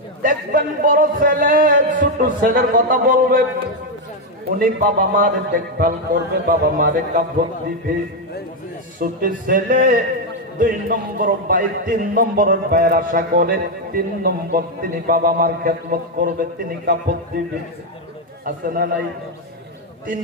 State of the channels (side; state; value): both; normal; correlation 0.04